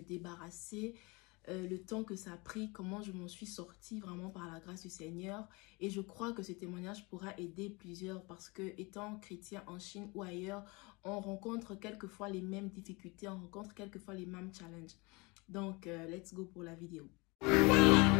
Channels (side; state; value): right; quieter; 26.6 dB